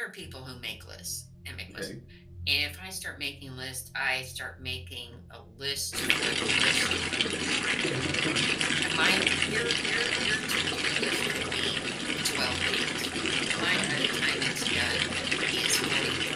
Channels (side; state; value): both; identical; correlation 1.00